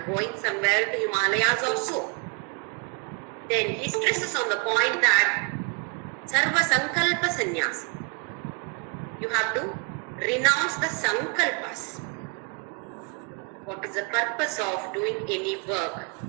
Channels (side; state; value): left; quieter; 33.9 dB